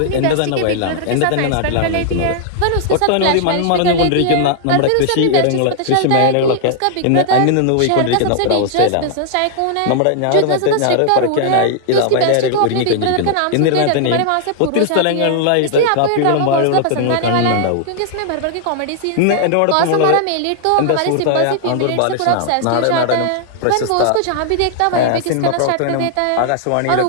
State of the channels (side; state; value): both; different; correlation -0.01